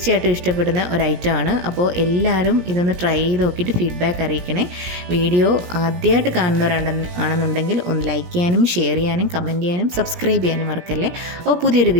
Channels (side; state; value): left; late; 17 ms